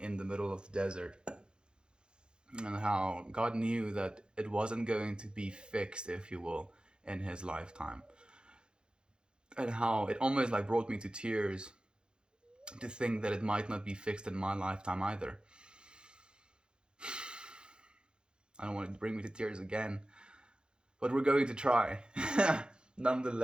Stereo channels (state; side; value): late; left; 0.049 ms